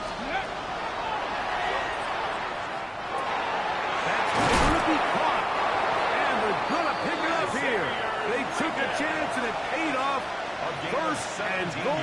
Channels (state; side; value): identical; both; correlation 1.00